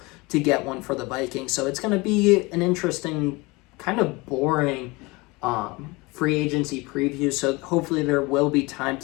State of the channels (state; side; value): quieter; right; 24.2 dB